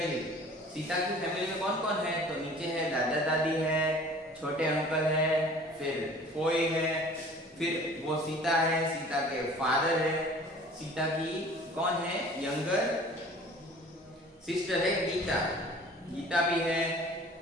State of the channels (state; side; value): normal; both; correlation 0.47